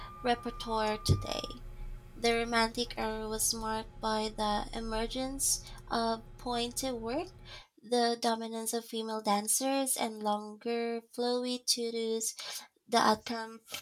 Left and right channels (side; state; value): both; identical; correlation 1.00